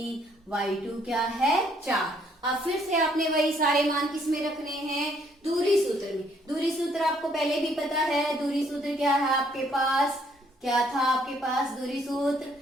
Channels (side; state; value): both; normal; correlation 0.67